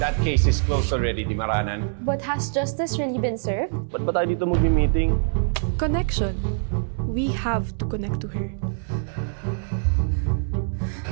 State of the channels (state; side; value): silent; left; 60 dB below the other